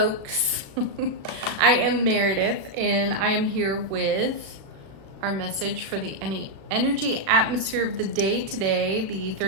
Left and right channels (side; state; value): left; late; 36 ms